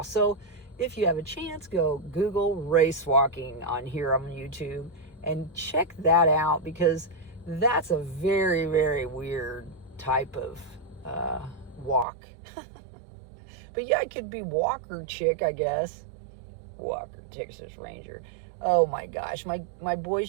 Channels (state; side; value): drops out; left; at 12.1 s